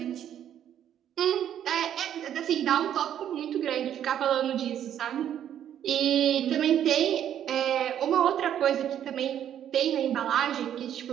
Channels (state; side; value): quieter; left; 10.2 dB